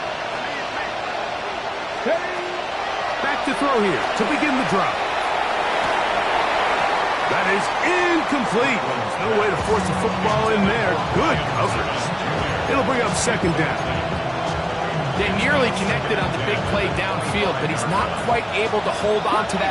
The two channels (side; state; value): both; identical; correlation 1.00